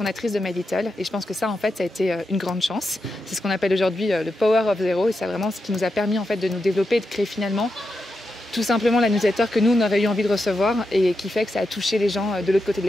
de My Little. Et je pense que ça, en fait, ça a été une grande chance. C'est ce qu'on appelle aujourd'hui le Power of Zero, et c'est vraiment ce qui nous a permis en fait de nous développer et de créer finalement tout simplement la newsletter que nous, on aurait eu envie de recevoir et qui fait que ça a touché les gens de l'autre côté de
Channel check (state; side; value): normal; both; correlation 0.87